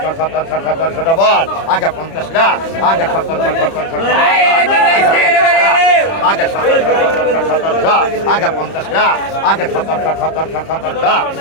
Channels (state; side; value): late; right; 30 ms